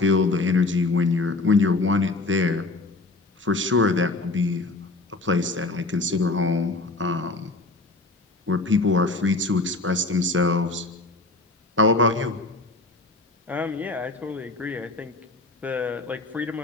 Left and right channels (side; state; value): right; quieter; 3.2 dB